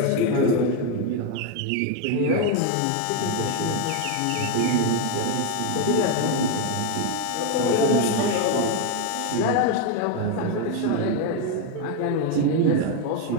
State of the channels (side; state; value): both; different; correlation 0.02